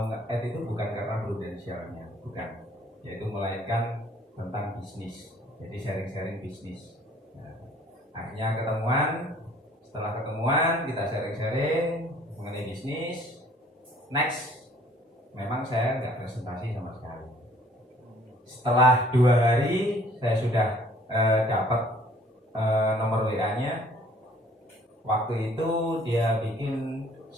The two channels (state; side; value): normal; both; correlation 0.57